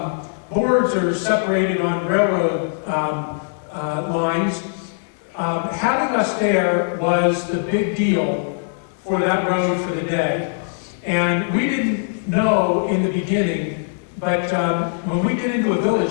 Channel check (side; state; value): right; silent; digital silence